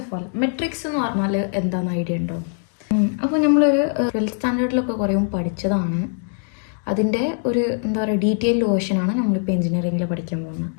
ഓഫ് ഓൾ മെട്രിക്സ് എന്ന് പറഞ്ഞാൽ എന്താണെന്ന് ഐഡിയ ഉണ്ടോ? അപ്പോൾ നമ്മളൊരു 12th സ്റ്റാൻഡേർഡിലൊക്കെ കുറേ പഠിച്ചതാണ്. അതിൻ്റെ ഒരു എന്താ പറയുക ഡീറ്റെയിൽഡ് വേർഷനാണ് നമ്മളിപ്പോൾ എഞ്ചിനീയറിംഗിൽ പഠിക്കാൻ പോകുന്നത്.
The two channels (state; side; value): silent; right; 55 dB below the other